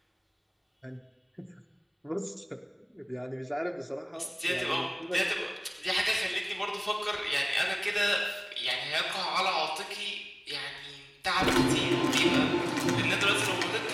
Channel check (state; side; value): identical; both; correlation 1.00